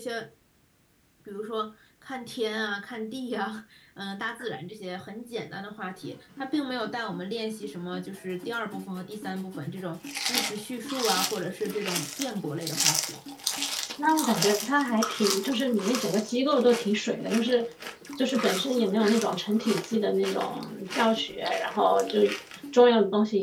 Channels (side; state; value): both; identical; correlation 1.00